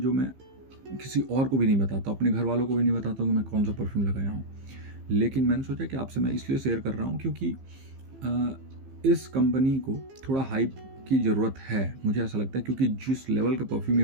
मैं किसी और को भी नहीं बताता, अपने घर वालों को भी नहीं बताता हूँ कि मैं कौन सा परफ्यूम लगाया हूँ। लेकिन मैंने सोचा कि आपसे मैं इसलिए शेयर कर रहा हूँ क्योंकि इस कंपनी को थोड़ा हाइप की ज़रूरत है, मुझे ऐसा लगता है। क्योंकि जिस लेवल का परफ्यूम ये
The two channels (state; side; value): late; left; 15 ms